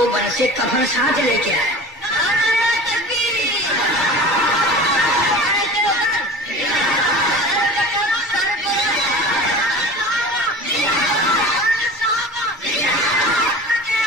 سے کفن ساتھ لے کے آیا.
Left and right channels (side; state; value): both; normal; correlation 0.38